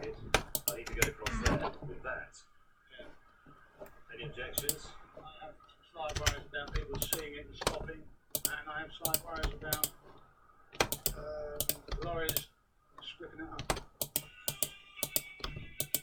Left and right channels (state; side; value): identical; both; correlation 1.00